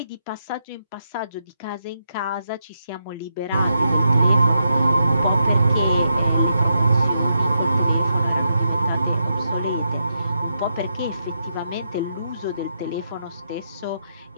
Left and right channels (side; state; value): both; inverted; correlation -0.83